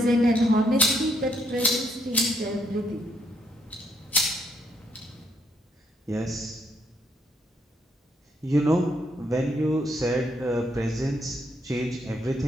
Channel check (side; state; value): both; normal; correlation 0.74